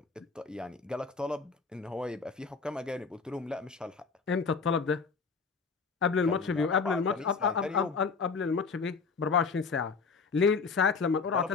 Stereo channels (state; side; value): quieter; right; 5.0 dB